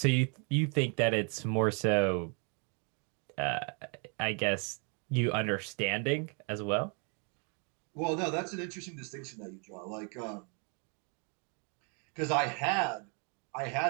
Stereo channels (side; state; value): left; quieter; 36.5 dB